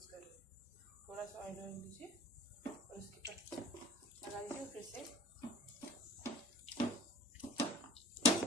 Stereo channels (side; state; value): both; normal; correlation 0.43